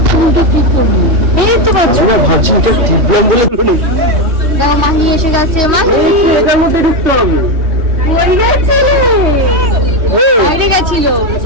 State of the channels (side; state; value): left; late; 3.2 ms